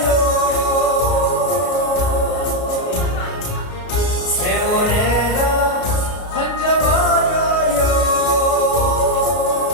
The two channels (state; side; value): late; right; 33 ms